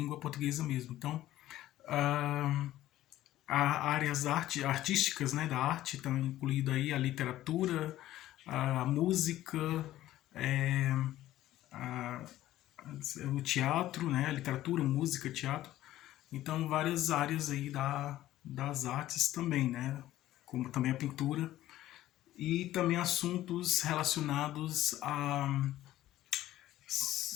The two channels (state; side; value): quieter; right; 14.4 dB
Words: portuguesa mesmo. Então, áreas artísticas, né, da arte estão incluído aí a literatura, a música, é, a, o teatro, né, a literatura, música, teatro. Então, várias áreas aí das artes também, né, como também a pintura e também assuntos relacionados a